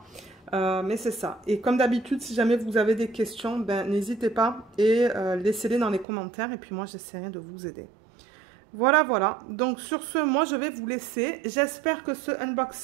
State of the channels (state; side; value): drops out; left; at 6.1 s